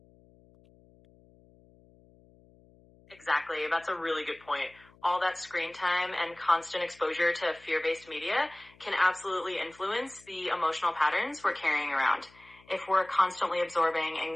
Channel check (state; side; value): noise; left; hum, 28 dB below the sound